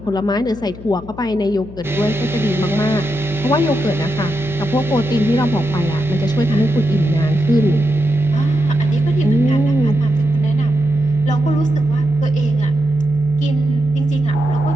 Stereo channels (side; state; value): left; noise; hum, 16 dB below the sound